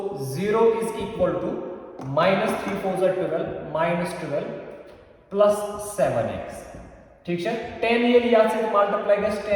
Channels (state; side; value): identical; both; correlation 1.00